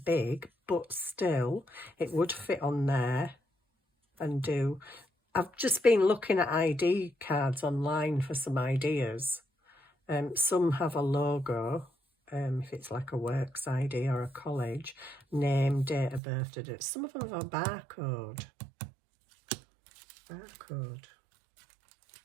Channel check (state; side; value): drops out; left; at 16.2 s